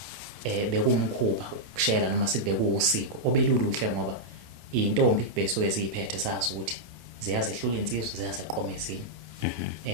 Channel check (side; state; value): left; late; 28 ms